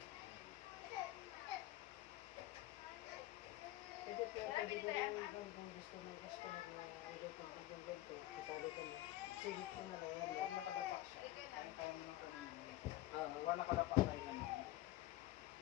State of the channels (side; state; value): right; quieter; 16.0 dB